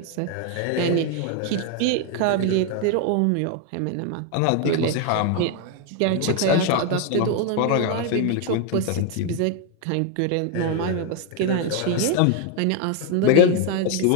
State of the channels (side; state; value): both; different; correlation 0.01